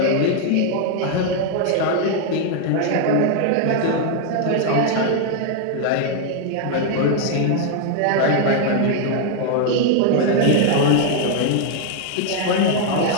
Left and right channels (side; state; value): both; different; correlation 0.00